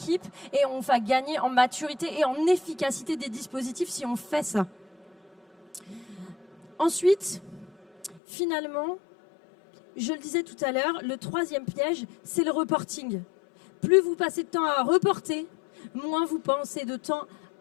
et on va gagner en maturité et en efficacité des dispositifs si on fait ça. Ensuite, finalement, je le disais tout à l'heure, le troisième piège, c'est le reporting. Plus vous passez de temps à reporter, moins vous pensez de temps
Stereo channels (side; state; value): right; drops out; at 8.2 s